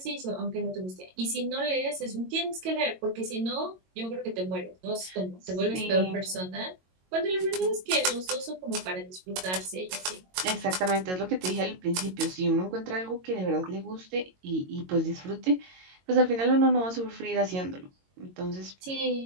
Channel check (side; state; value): left; late; 22 ms